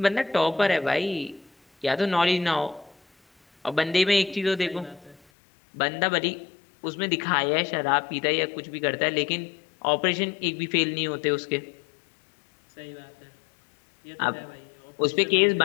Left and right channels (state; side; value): drops out; right; at 5.2 s